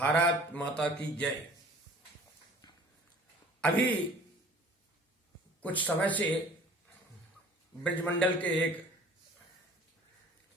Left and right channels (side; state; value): both; normal; correlation 0.49